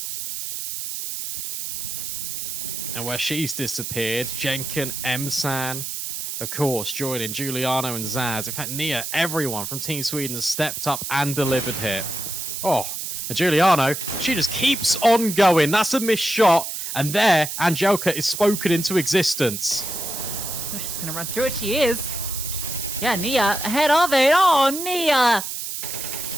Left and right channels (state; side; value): noise; right; hiss, 5 dB below the sound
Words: And where she's disappeared, Jenkin, Emsan, of course, joining Giuliano and Zaz. In fact, Nia, everyone from Team Sweden has stepped up and delivered here. Oh, and Giuliano, she just keeps on going. That's a missed shot. And there, Angelka is spoken into existence. Oh, she's going to run through it. She is. Yeah, Nia ahead of it. Oh, Nia.